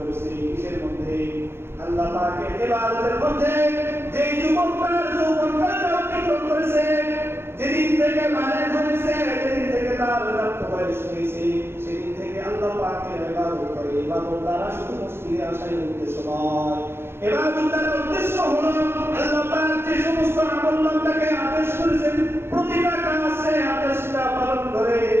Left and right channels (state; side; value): late; left; 0.11 ms